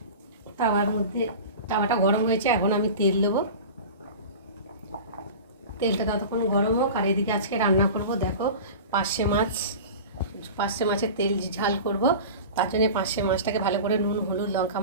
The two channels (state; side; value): inverted; both; correlation -0.34